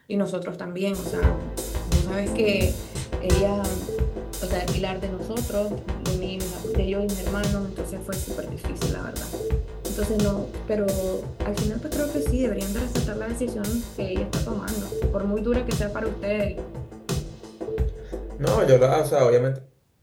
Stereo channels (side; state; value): both; identical; correlation 1.00